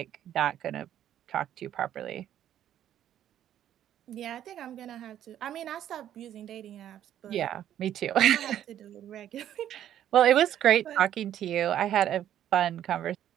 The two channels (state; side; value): quieter; left; 11.1 dB